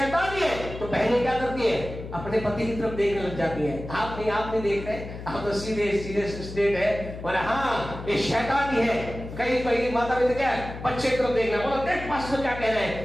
ही है तो बहनें क्या करती है? अपने पति की तरफ देखने लग जाती है। आप नहीं देख रहे, आप तो सीधे स्टेट है, बोले हाँ ये शैतान ही है। कई माता पिता क्या है? बच्चे की तरफ देखना, बोला देख पास्टर क्या कह रहे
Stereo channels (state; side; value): noise; left; hum, 11 dB below the sound